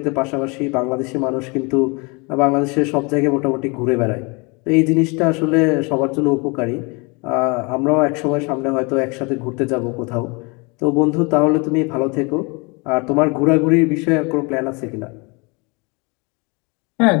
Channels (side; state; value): right; quieter; 29.3 dB